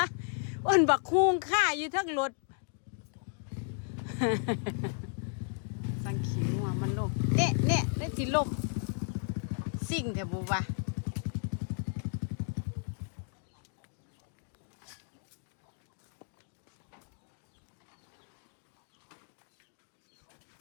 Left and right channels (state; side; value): silent; right; 55 dB below the other